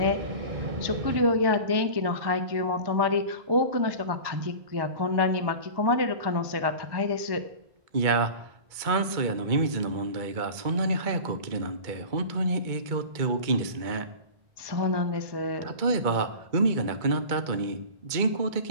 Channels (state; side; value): late; left; 2.2 ms